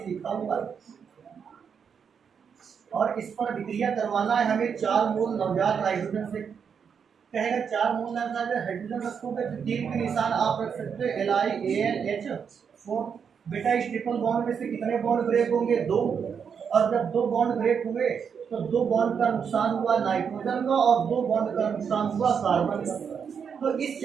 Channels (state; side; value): quieter; left; 6.9 dB